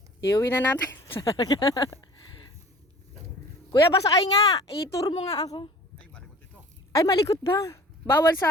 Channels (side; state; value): both; normal; correlation 0.45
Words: Iuwi na natin. Kuya, pasakay nga. I-tour mo nga ako. Ay, malikot ito. Ay, malikot ba? Bawal